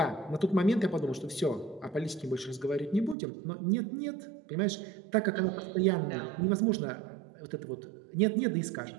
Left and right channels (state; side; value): drops out; left; at 3.2 s